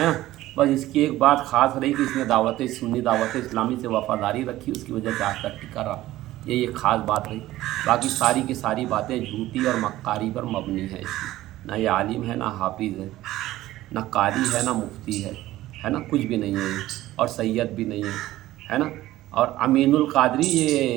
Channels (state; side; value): quieter; left; 15.7 dB